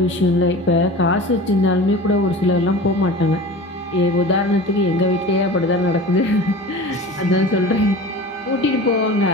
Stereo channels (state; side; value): normal; both; correlation 0.36